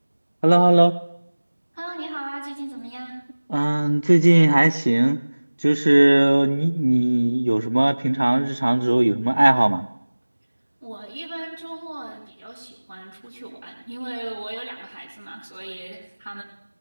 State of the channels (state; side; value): inverted; both; correlation -1.00